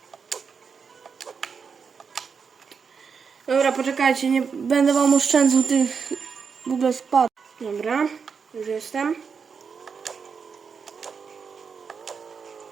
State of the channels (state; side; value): quieter; left; 5.9 dB